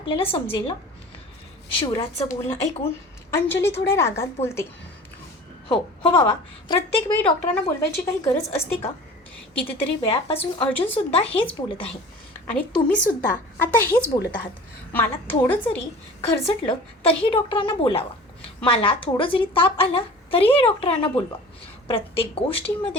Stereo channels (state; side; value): normal; both; correlation 0.41